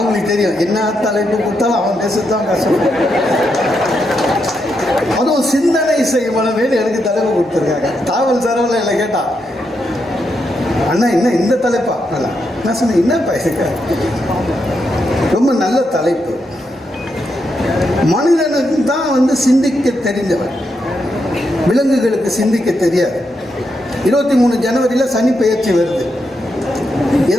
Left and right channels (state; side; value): normal; both; correlation 0.82